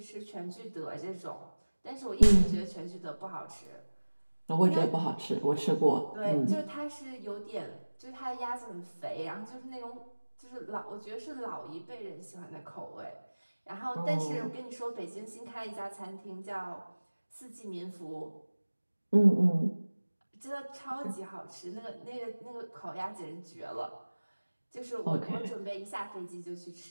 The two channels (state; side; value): inverted; both; correlation -1.00